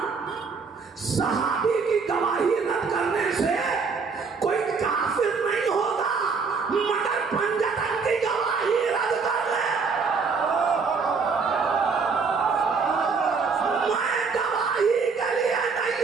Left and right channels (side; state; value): left; quieter; 5.1 dB